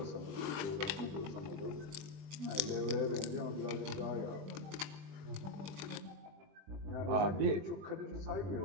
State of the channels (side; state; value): left; late; 20 ms